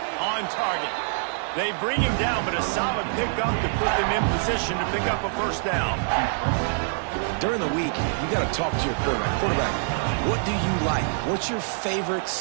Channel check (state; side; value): silent; left; digital silence